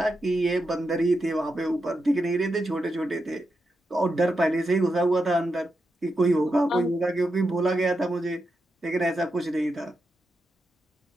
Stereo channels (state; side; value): normal; both; correlation 0.87